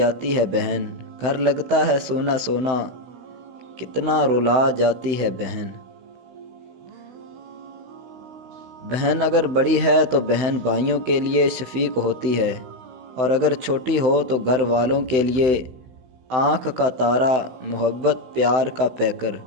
ہے بہن۔ گھر لگتا ہے سونا سونا، کتنا رلا جاتی ہے بہن۔ بہن اگر بڑی ہے تو بہن بھائیوں کے لیے شفیق ہوتی ہے، اور اگر چھوٹی ہو تو گھر والوں کے لیے آنکھ کا تارا، محبت پیار کا پیکر۔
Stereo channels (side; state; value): left; late; 16 ms